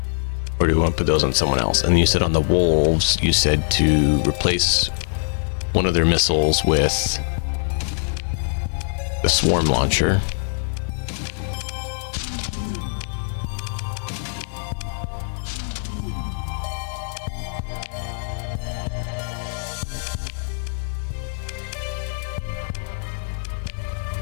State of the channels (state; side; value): silent; right; 63 dB below the other